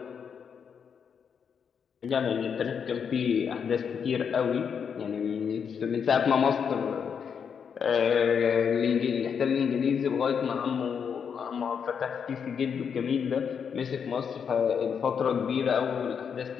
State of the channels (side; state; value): right; quieter; 7.0 dB